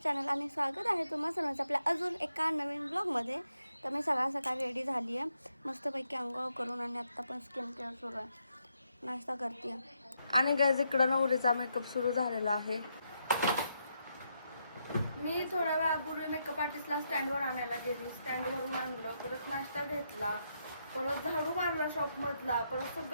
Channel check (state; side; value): inverted; both; correlation -0.80